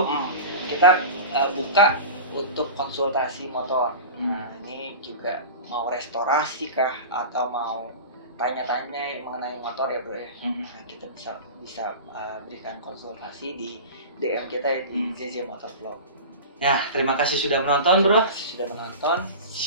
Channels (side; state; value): both; inverted; correlation -0.31